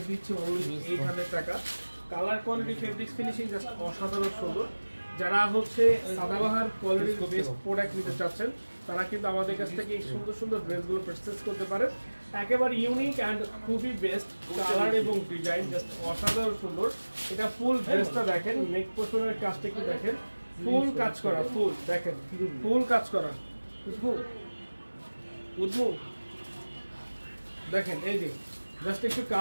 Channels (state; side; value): inverted; both; correlation -1.00